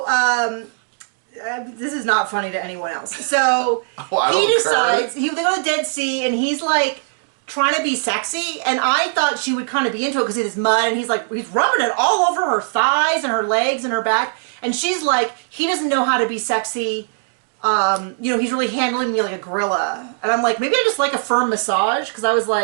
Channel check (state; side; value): silent; left; digital silence